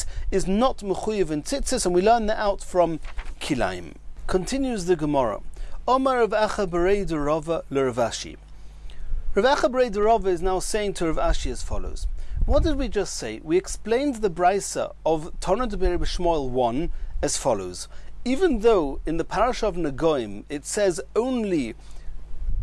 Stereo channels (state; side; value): identical; both; correlation 1.00